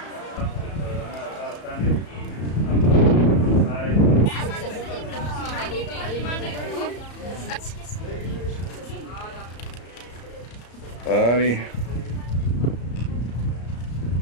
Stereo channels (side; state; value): right; late; 34 ms